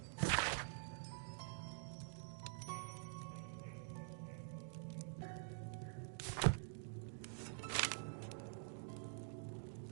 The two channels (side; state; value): left; silent; digital silence